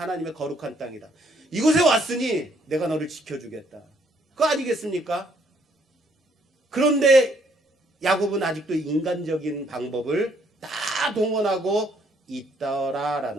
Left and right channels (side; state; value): both; normal; correlation 0.68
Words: 거룩한 땅이다. 이곳에 왔으니 내가 너를 지켜주겠다. 그거 아니겠습니까? 그런데 야곱은 아직도 인간적인 방법을 다 동원하고